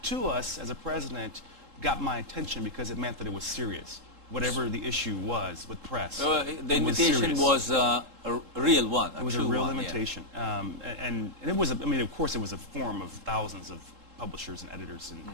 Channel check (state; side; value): late; left; 3.7 ms